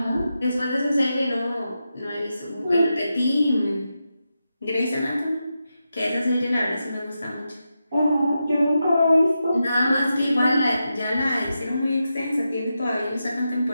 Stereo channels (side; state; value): both; inverted; correlation -0.88